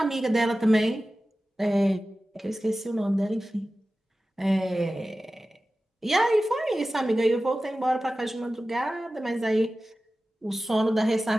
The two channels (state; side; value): normal; both; correlation 0.95